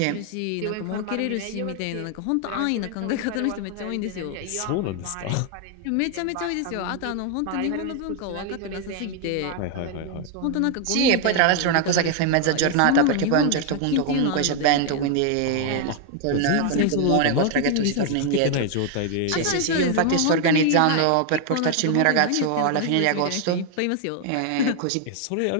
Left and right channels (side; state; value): both; different; correlation 0.00